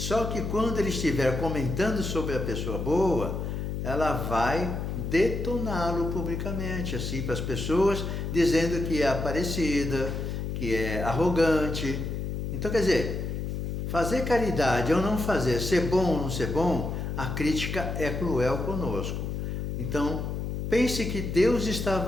que quando ele estiver comentando sobre a pessoa boa, ela vai detoná-lo publicamente, assim, para as pessoas, dizendo que é aparecida, que é arrogante. Então, quer dizer, fazer caridade ou não fazer, ser bom ou não ser bom, a crítica é cruel conosco. Então, pense que Deus está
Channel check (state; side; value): noise; left; hum, 3 dB below the sound